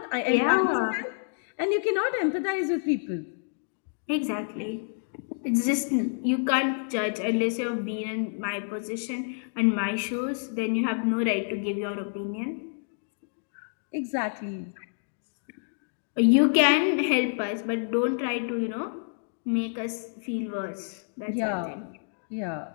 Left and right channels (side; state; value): right; silent; digital silence